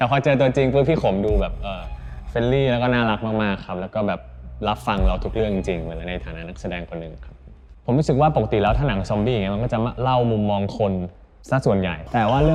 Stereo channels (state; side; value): identical; both; correlation 1.00